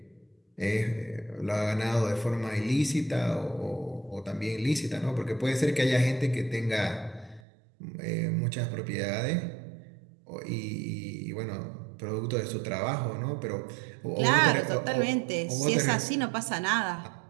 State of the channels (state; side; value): drops out; left; at 7.4 s